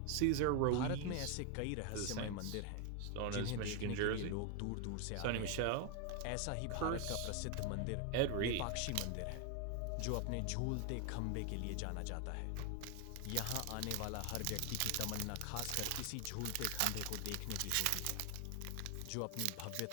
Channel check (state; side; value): different; both; correlation 0.01